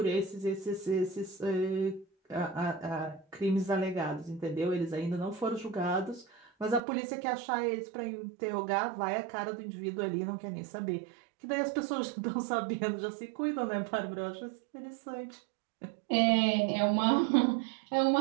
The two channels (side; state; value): left; drops out; at 6.8 s